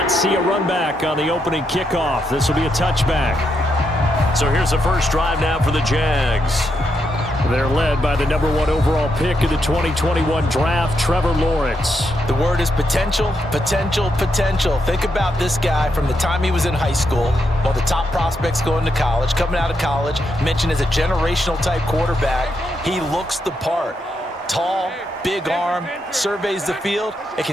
see a run back on the opening kickoff. This will be a touchback. So here's the first drive now for the Jags. They're led by the #1 overall pick of the 2021 draft, Trevor Lawrence. The word is potential, potential, potential. Think about this guy from the time he was in high school, one of the top prospects going to college, coming out of college, mentioned as a generational type quarterback. He looks the part. Tall, big arm, surveys the field, and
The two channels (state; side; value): normal; both; correlation 0.81